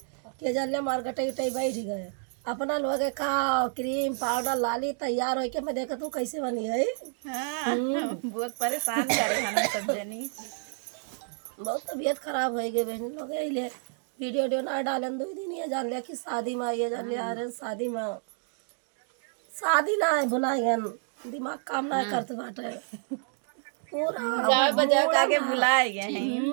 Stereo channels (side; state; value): left; silent; 58 dB below the other